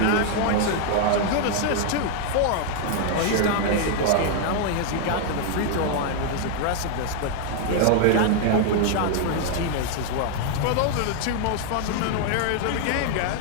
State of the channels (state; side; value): different; both; correlation 0.00